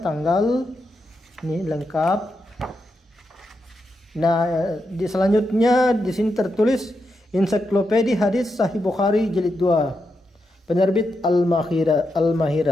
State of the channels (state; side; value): normal; both; correlation 0.85